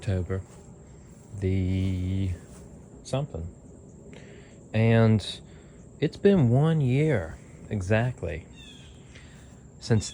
the something. And it's been 1 year exactly since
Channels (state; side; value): identical; both; correlation 1.00